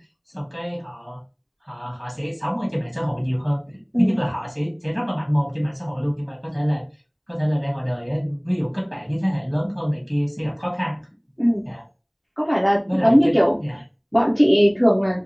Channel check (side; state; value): both; identical; correlation 1.00